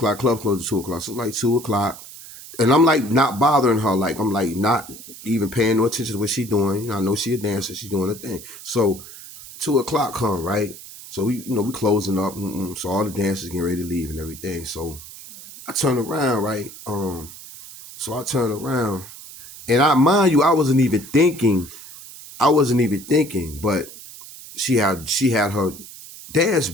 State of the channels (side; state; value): right; noise; hiss, 16 dB below the sound